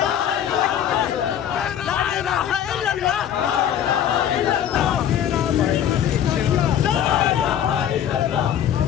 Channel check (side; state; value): right; quieter; 9.9 dB